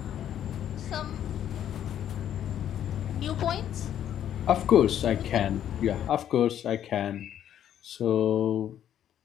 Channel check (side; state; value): right; quieter; 10.4 dB